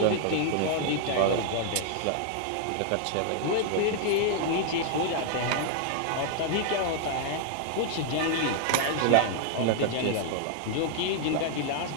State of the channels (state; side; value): different; both; correlation 0.00